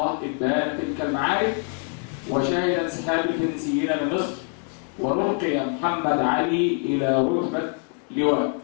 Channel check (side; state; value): right; quieter; 39.1 dB